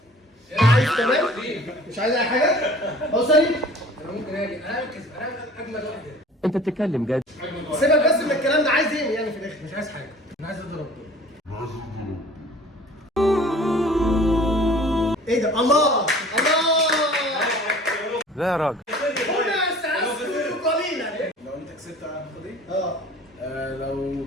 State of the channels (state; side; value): normal; both; correlation 0.47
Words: عايز تمام؟ مش عايز اي حاجه؟ اوصلي؟ انا ممكن اجي انا اجمل واحد. انت بتتكلم جد؟ سيبك بس من الكلام ده، عايز ايه يعني في الاخر؟ مش عايز حاجه، انا عايز اضرب دول. ايه ده؟ الله الله. لا يا راجل. لو انت كسبت هاخد ايه؟ لو